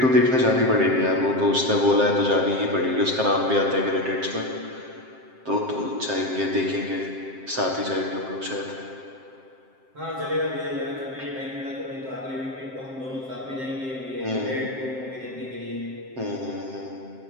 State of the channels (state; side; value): late; left; 7.6 ms